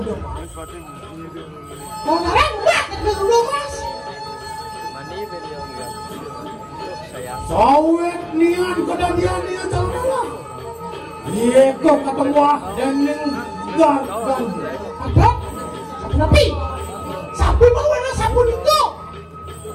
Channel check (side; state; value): both; identical; correlation 1.00